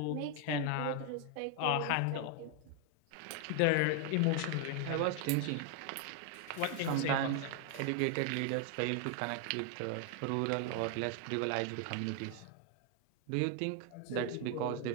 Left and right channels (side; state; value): both; different; correlation 0.01